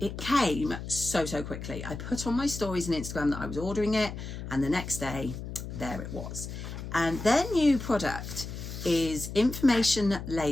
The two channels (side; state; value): left; noise; hum, 8 dB below the sound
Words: came so quickly. I put on my stories on Instagram that I was ordering it, and the next day, there it was. And their new product is information